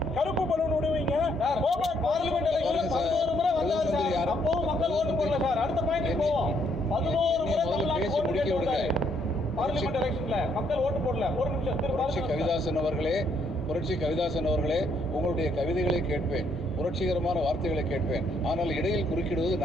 கருப்பு பலூன் விடுவீங்க. பார்லிமெண்ட் எலெக்ஷன்ல 11 முறை வந்தார் சார். அப்பவும் மக்கள் ஓட்டு போடல சார். அடுத்த பாயிண்ட் போவோம். 11 முறை தமிழ்நாட்டுக்கு ஓட்டு கேட்டு வந்தாரு. பார்லிமெண்ட் எலெக்ஷன்ல மக்கள் ஓட்டு போடல. ஒரு நிமிஷம். புரட்சி கவிதாசன் அவர்களே, உங்களுடைய கவிதைகளை கேட்பேன், புரட்சிகரமான வார்த்தைகளை கேட்பேன். ஆனால் இடையில் குறுக்கிடுவது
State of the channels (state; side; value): normal; both; correlation 0.71